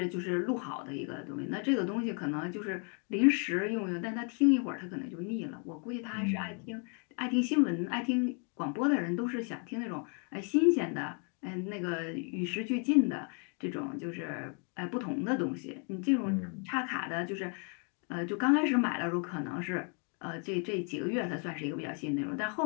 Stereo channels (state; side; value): quieter; right; 39.3 dB